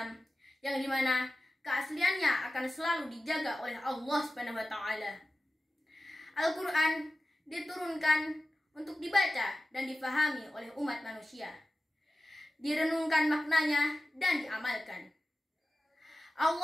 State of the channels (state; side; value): normal; both; correlation 0.95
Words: yang dimana keasliannya akan selalu dijaga oleh Allah Subhanahu wa taala. Al-Quran diturunkan untuk dibaca dan difahami oleh umat manusia, direnungkan maknanya dan diamalkan.